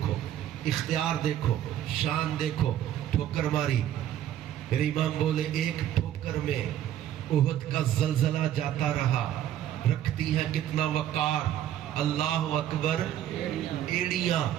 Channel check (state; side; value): quieter; left; 11.5 dB